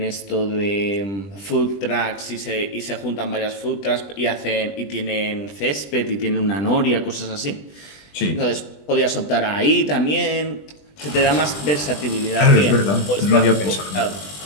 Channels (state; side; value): late; right; 20 ms